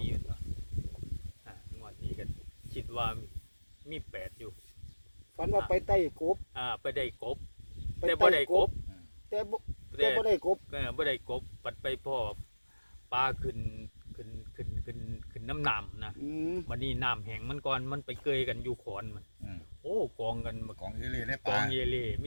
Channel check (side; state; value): both; inverted; correlation -1.00